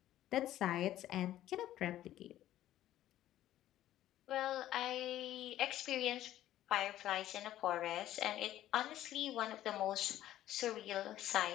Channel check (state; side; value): quieter; right; 13.3 dB